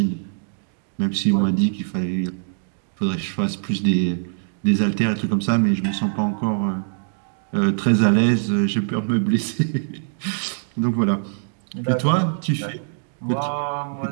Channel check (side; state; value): left; silent; digital silence